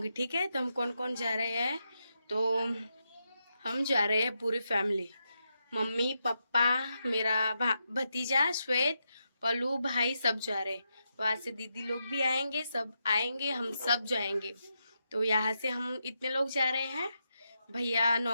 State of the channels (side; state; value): both; inverted; correlation -0.84